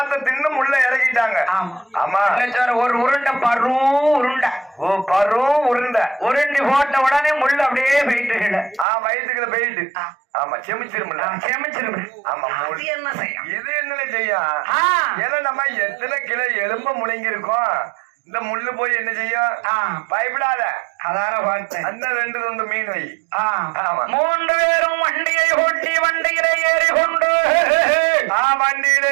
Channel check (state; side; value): drops out; left; at 8.8 s